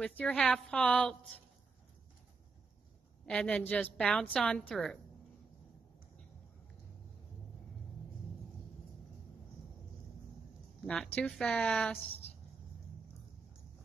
your half halt. And then just bounce on through. Not too fast.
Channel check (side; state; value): left; quieter; 4.4 dB